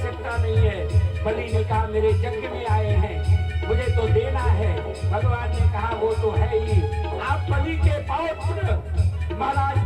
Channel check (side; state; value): both; identical; correlation 1.00